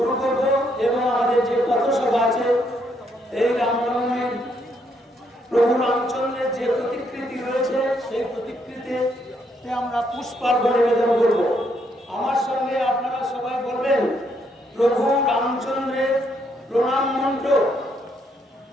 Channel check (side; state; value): both; normal; correlation 0.74